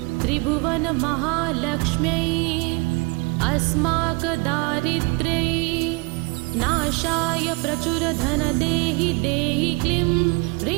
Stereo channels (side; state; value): left; quieter; 27.3 dB